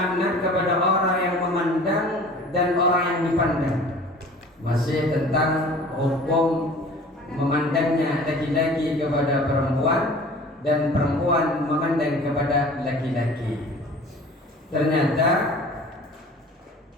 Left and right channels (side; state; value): both; normal; correlation 0.45